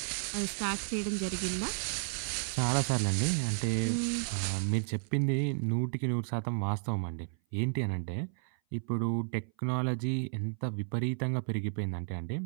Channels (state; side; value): silent; left; 56 dB below the other